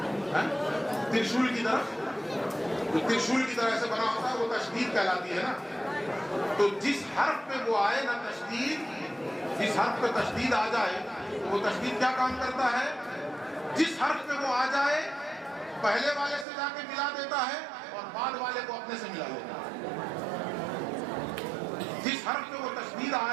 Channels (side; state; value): left; drops out; at 16.4 s